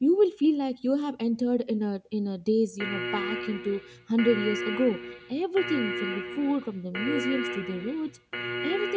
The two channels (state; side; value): identical; both; correlation 1.00